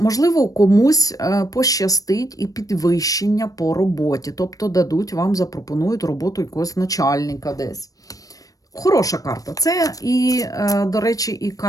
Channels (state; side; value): late; right; 0.17 ms